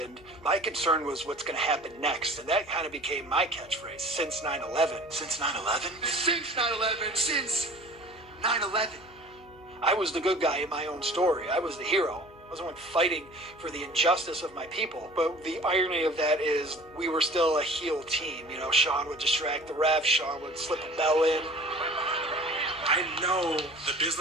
my concern was what's going to happen next. And that kind of became my catchphrase, since 9/11. Since 9/11? Since 9/11. Since 9/11. I was the good guy in my own story. I was the hero. I was the one fighting for the injustice of my people. But the irony of that is we were still a heel team. You know, Sean would distract the ref. Sean would slip a bell in. I know the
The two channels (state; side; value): noise; left; hum, 24 dB below the sound